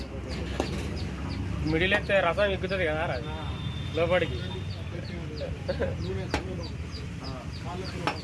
మిడిల్ ఎత్తే రసం ఎక్కుతుంది కదా లోపలికి.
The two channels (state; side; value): identical; both; correlation 1.00